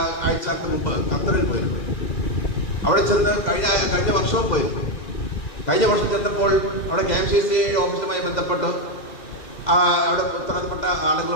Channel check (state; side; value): late; right; 2.0 ms